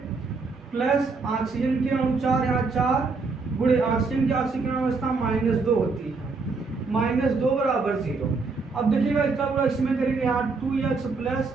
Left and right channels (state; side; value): quieter; left; 4.2 dB